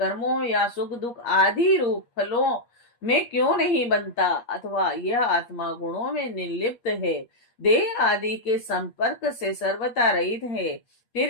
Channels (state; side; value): late; right; 8.4 ms